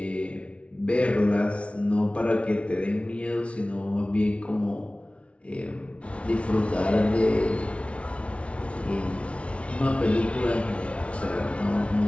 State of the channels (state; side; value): late; right; 0.061 ms